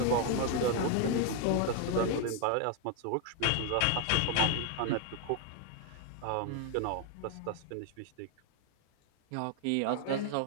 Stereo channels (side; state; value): both; different; correlation 0.01